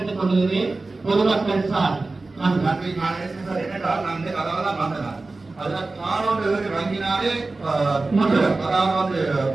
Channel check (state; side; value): quieter; left; 3.4 dB